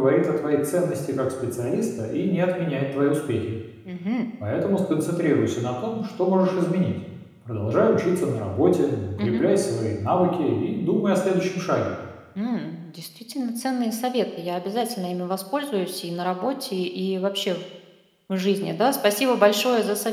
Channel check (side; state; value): both; identical; correlation 1.00